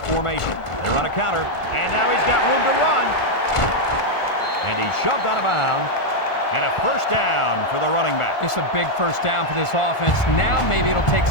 formation. They run a counter, and now he's got room to run. And he's shoved out of bounds. And a first down for the running back. It's a big first down for this offense. Now maybe it'll take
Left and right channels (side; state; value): right; late; 1.4 ms